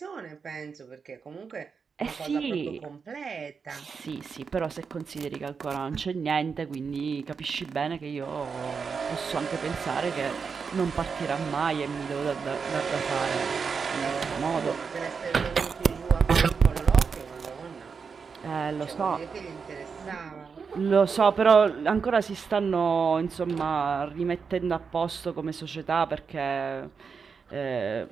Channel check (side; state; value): left; quieter; 5.7 dB